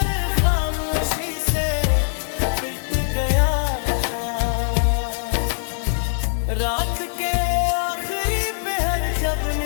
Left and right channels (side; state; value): right; silent; digital silence